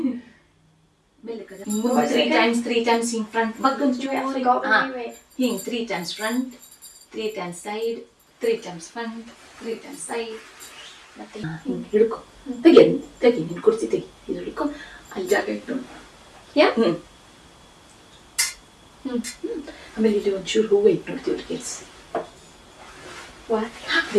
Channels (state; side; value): identical; both; correlation 1.00